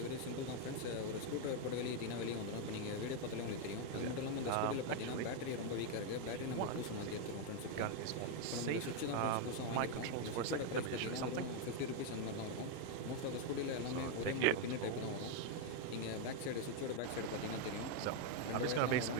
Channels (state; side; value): different; both; correlation 0.01